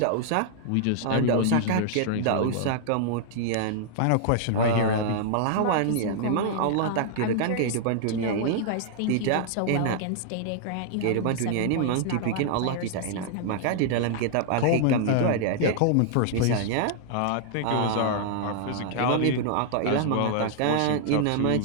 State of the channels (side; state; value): both; different; correlation -0.01